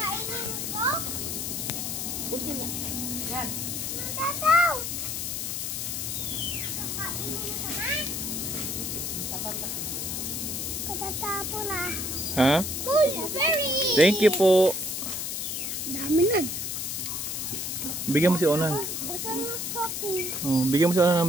ko? Puti niya. Yan. Tataw! Kakainin ko na? Katatapo na. Ha? Berry! Thank you po. Dami nun. Bigyan mo si Onan. Basta ng shopping. Oh, bigyan mo si Onan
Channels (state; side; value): noise; left; hiss, 3 dB below the sound